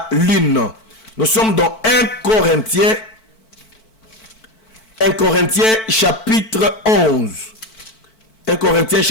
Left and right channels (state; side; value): late; right; 4.5 ms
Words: lune. Nous sommes dans 1 Corinthiens chapitre 11. 1 Corinthiens